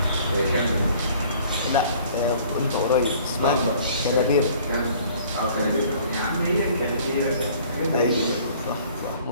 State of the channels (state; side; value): inverted; both; correlation -0.53